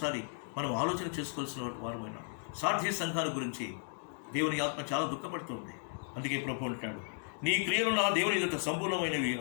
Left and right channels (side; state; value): right; silent; 55 dB below the other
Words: మనం ఆలోచన చేసుకోవాల్సిన వారమైనా. సార్థి సంఘాల గురించి దేవుని ఆత్మ చాలా దుఃఖపడుతుంది. అందుకే ప్రభు అంటాడు, నీ క్రియలు నా దేవుని ఎదుట సంపూర్ణమైనవి